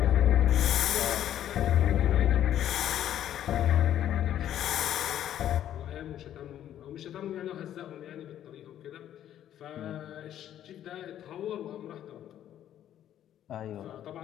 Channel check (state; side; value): quieter; right; 11.1 dB